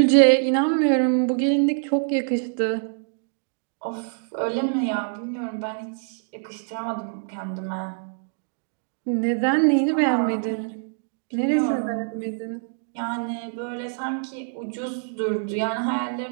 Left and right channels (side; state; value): left; silent; 62 dB below the other